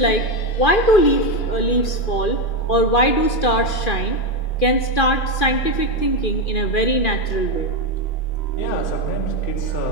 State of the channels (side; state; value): right; late; 2.4 ms